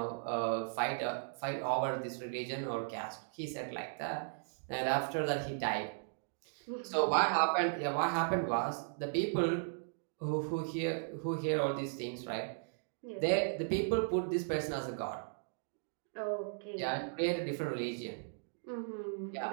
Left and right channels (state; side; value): silent; left; digital silence